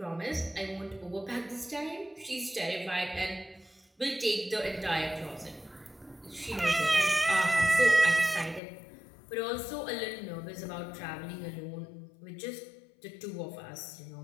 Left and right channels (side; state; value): right; drops out; at 8.6 s